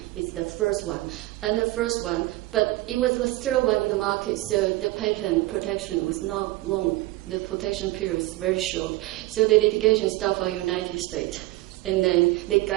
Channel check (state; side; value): quieter; left; 18.8 dB